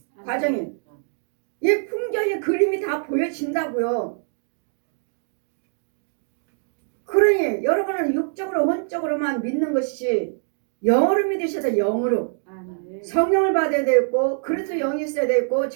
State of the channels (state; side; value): silent; left; digital silence